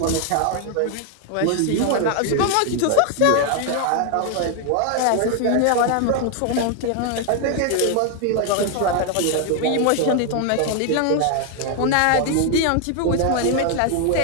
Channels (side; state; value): both; different; correlation 0.00